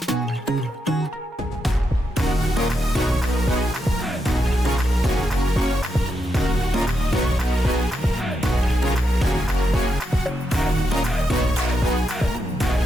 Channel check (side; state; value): both; normal; correlation 0.83